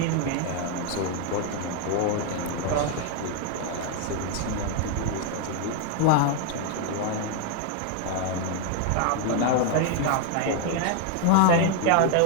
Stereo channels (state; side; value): different; both; correlation 0.00